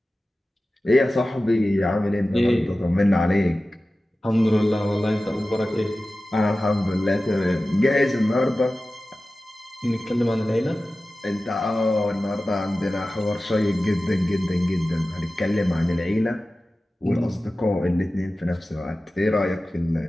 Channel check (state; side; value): normal; both; correlation 0.95